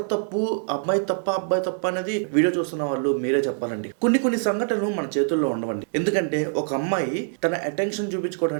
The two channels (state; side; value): silent; left; 62 dB below the other